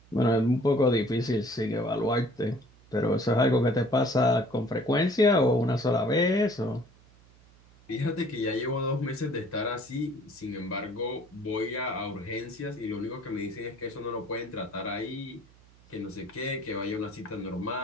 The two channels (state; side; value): noise; right; hum, 27 dB below the sound